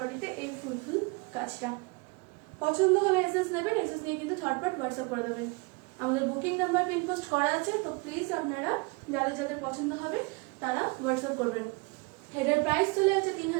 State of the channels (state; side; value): quieter; left; 28.6 dB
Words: এই ফুল ফুল কাজটা। পছন্দ হলে এসএস নেবেন, এসএস নিয়ে কিন্তু ঝটপট হোয়াটসঅ্যাপ করে দেবেন। আমাদের বুকিং নাম্বার পিন পোস্ট করা আছে, তো প্লিজ আপনারা যাদের যাদের পছন্দ হবে তারা হোয়াটসঅ্যাপ করবেন। এটার প্রাইস চলে যাচ্ছে